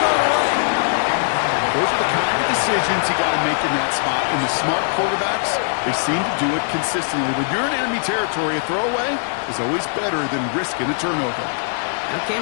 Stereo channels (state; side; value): silent; right; 65 dB below the other